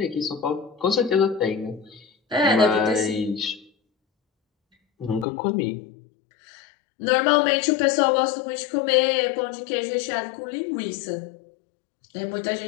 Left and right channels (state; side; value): drops out; right; at 5.2 s